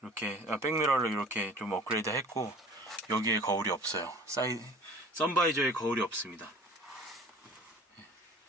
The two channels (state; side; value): normal; both; correlation 0.46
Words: 백미러를 이렇게 좀 업그레이드 했고, 여기에 거울이 없어요. 선바이저에 거울이 없습니다.